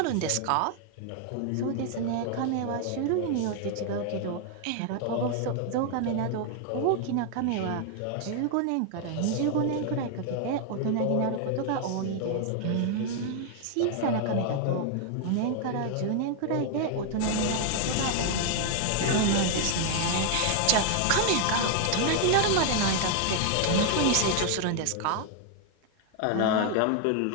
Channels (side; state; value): both; different; correlation 0.00